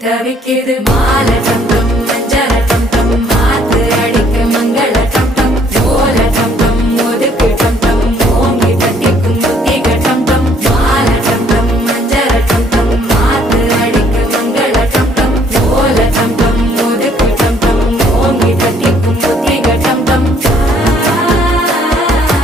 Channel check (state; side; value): normal; both; correlation 0.63